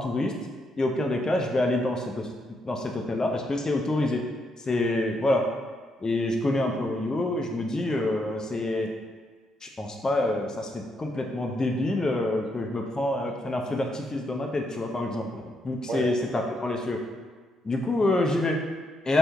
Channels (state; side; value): normal; both; correlation 0.79